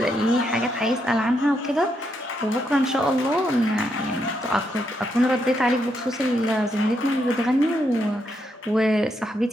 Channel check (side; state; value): both; normal; correlation 0.79